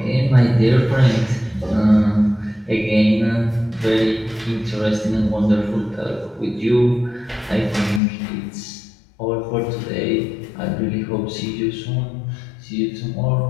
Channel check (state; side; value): drops out; right; at 8.0 s